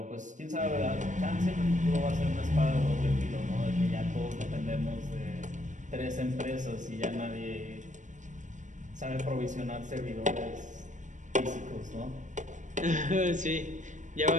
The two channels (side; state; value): left; late; 0.36 ms